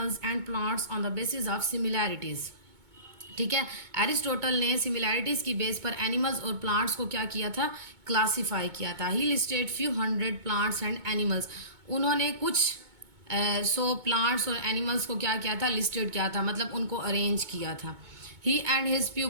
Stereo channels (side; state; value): left; late; 2.2 ms